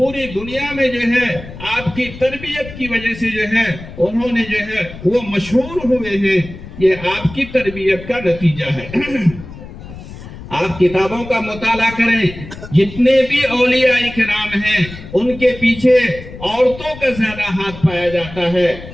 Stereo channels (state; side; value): noise; left; rumble, 14 dB below the sound